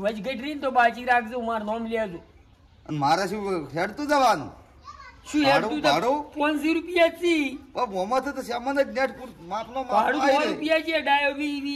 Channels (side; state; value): both; identical; correlation 1.00